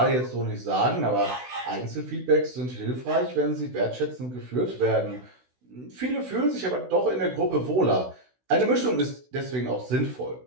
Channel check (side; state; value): left; late; 16 ms